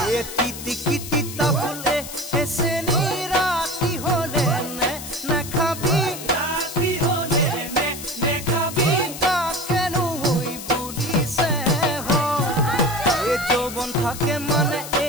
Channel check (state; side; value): noise; left; hiss, 11 dB below the sound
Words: এ তিতি ফুলে এসে রাতি হলে নে খাবি রাতি হলে নে খাবি তা কেন হই বলিছে এ যৌবন থাকে মানে